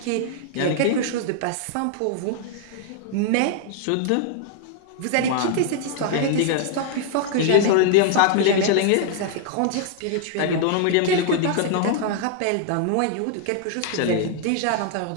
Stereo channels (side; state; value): both; different; correlation 0.00